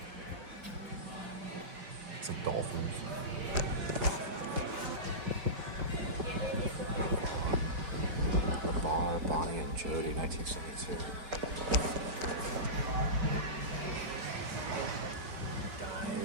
Some dolphins. Ball, Bonnie and Jody, 1972.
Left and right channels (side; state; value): left; late; 4.7 ms